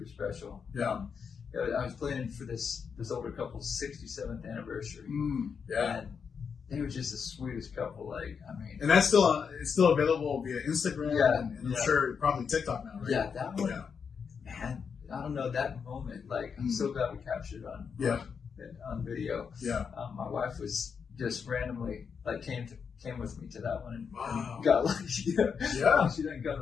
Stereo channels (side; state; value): right; quieter; 6.3 dB